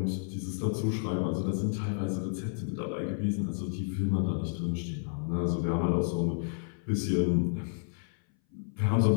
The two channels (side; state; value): right; silent; 57 dB below the other